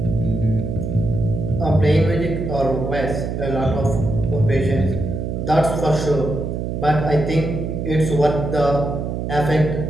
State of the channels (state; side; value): noise; right; hum, 3 dB below the sound